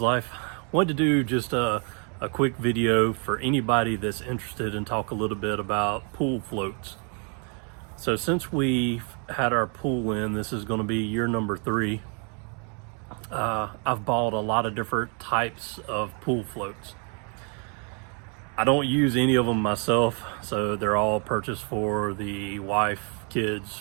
Life. Wanted to do just a quick video for anybody that's interested in talk a little bit about pool floats. So since we've had our pool in, this is going to be year number 3. I've bought a lot of different types of pool floats. I don't use any of them myself, so they're all purchased for the wife, kids,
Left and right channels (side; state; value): left; quieter; 38.0 dB